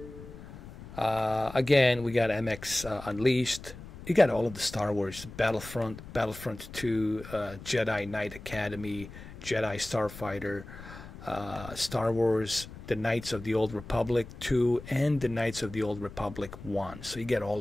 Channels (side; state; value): left; noise; rumble, 15 dB below the sound